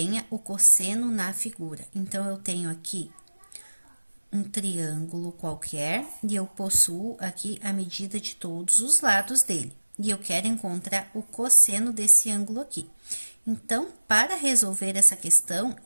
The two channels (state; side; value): inverted; both; correlation -1.00